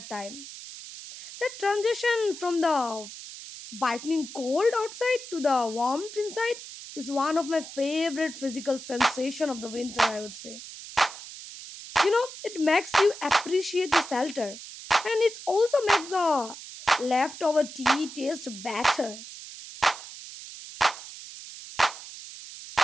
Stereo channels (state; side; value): noise; right; hiss, 13 dB below the sound